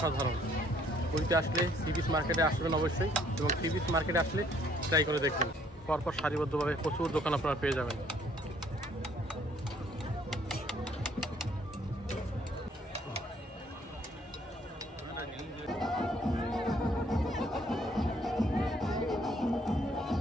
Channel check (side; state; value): both; normal; correlation 0.64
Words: পুরীতে আসলে সি বিচ মার্কেটে আসবেন অবশ্যই, এবং সি বিচ মার্কেটে আসলে ট্রাই করে দেখবেন। পরপর সারিবদ্ধভাবে প্রচুর দোকান আপনারা পেয়ে যাবেন।